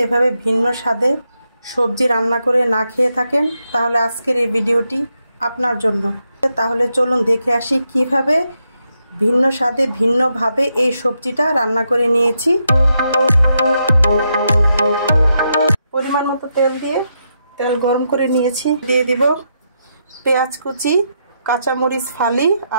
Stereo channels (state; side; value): inverted; both; correlation -0.82